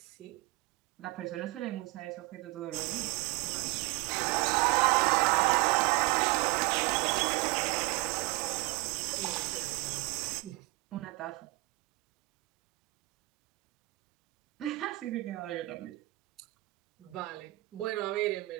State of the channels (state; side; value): quieter; left; 22.8 dB